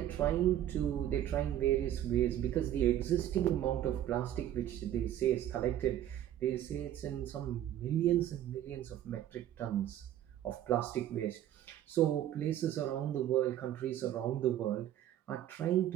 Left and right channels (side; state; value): left; quieter; 11.8 dB